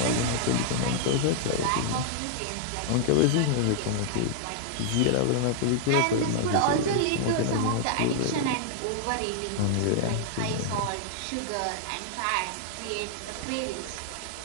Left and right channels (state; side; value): different; both; correlation -0.01